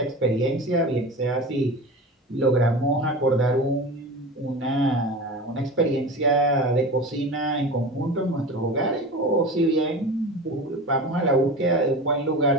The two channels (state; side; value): normal; both; correlation 0.31